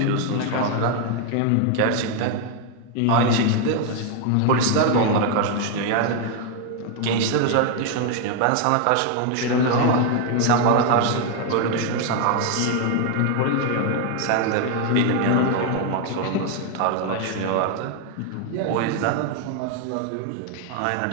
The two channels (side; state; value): both; different; correlation 0.01